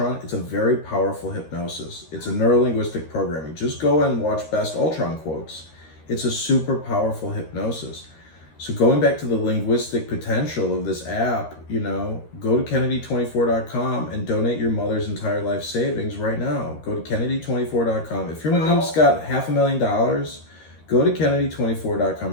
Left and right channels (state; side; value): late; right; 13 ms